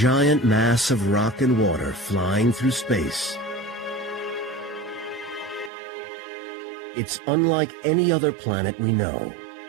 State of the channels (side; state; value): left; drops out; at 5.7 s